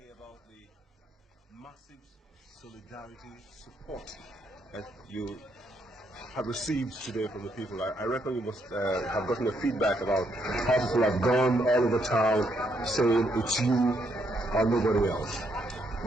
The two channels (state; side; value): normal; both; correlation 0.75